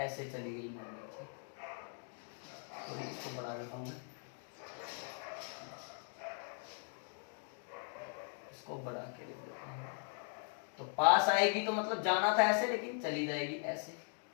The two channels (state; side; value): silent; right; 51 dB below the other